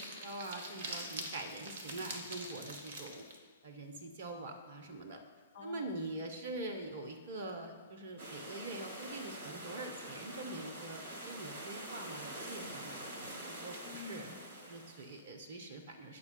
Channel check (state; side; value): inverted; both; correlation -0.41